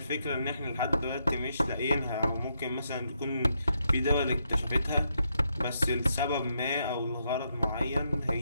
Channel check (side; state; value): both; inverted; correlation -0.80